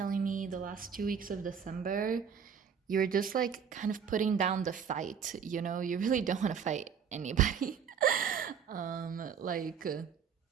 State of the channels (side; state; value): left; quieter; 7.2 dB